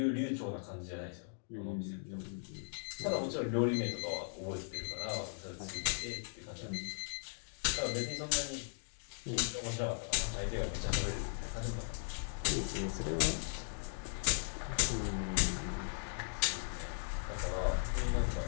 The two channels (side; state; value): right; silent; digital silence